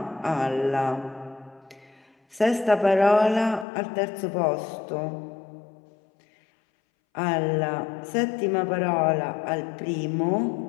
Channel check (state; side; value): drops out; right; at 3.7 s